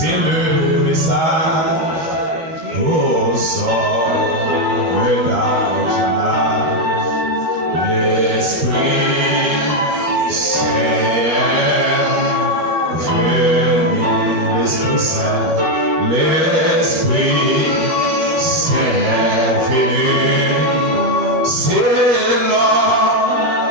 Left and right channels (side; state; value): left; late; 12 ms